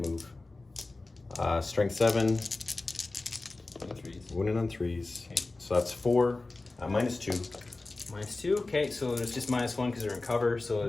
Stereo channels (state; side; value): quieter; right; 3.3 dB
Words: move. Strength 7, wounding on 3s. Okay. So that's 4, -2. -2. Okay, so there's just -1 because they're in cover, so